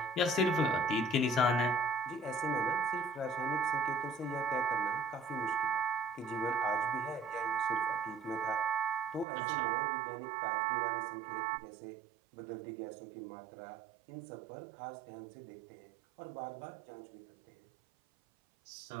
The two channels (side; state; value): left; drops out; at 9.2 s